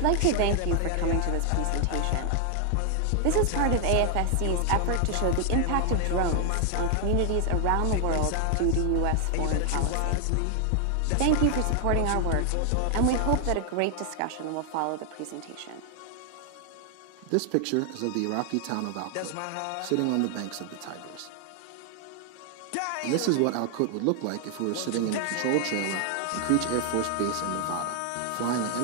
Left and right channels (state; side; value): different; both; correlation 0.00